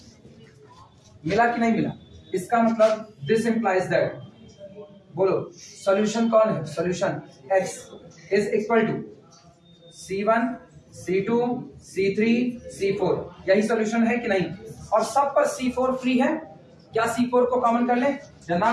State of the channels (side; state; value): both; identical; correlation 1.00